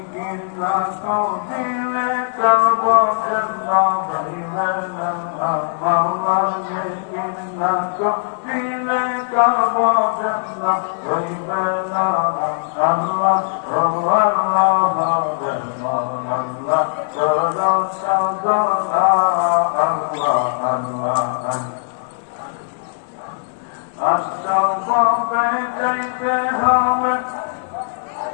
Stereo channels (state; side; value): silent; right; 66 dB below the other